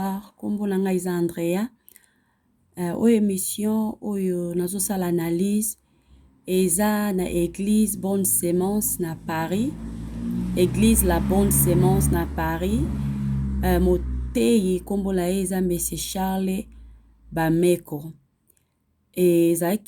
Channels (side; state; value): both; identical; correlation 1.00